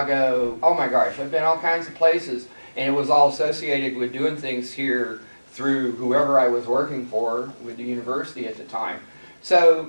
Oh my gosh, I've been all kinds of places. And it was all associated with doing things here through whoever I was working for with the university at the time.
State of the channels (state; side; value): inverted; both; correlation -1.00